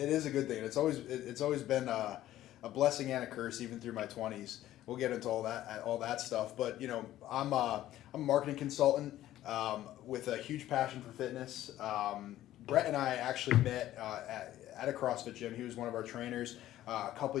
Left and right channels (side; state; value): right; quieter; 13.7 dB